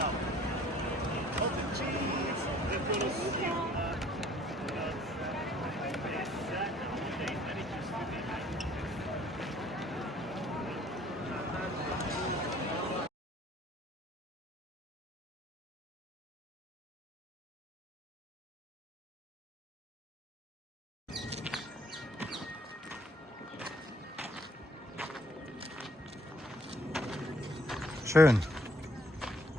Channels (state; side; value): normal; both; correlation 0.59